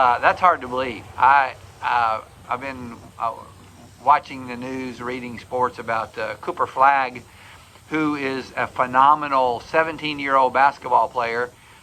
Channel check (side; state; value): both; identical; correlation 1.00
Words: hard to believe. I've been watching the news, reading sports about Cooper Flagg, who is a phenomenal 17-year-old basketball player.